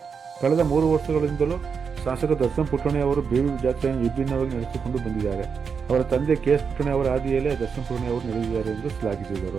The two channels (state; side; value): quieter; left; 6.0 dB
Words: ಕಳೆದ 3 ವರ್ಷಗಳಿಂದಲೂ ಶಾಸಕ ದರ್ಶನ್ ಪುಟ್ಟಣೆ ಅವರು ಬೇಬಿ ಜಾತ್ರೆಯನ್ನು ವಿಭಿನ್ನವಾಗಿ ನಡೆಸಿಕೊಂಡು ಬಂದಿದ್ದಾರೆ. ಅವರ ತಂದೆ KS ಪುಟ್ಟಣೆ ಅವರ ಹಾದಿಯಲ್ಲೇ ದರ್ಶನ್ ಪುಟ್ಟಣೆ ಅವರು ನಡೆದಿದ್ದಾರೆ ಎಂದು